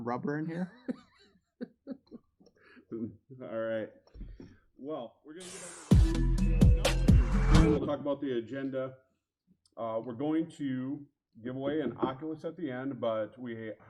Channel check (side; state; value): both; identical; correlation 1.00